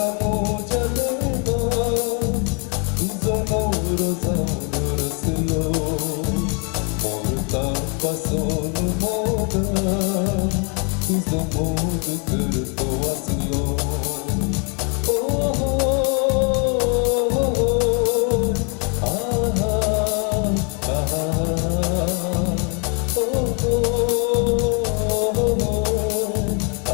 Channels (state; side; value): quieter; right; 36.5 dB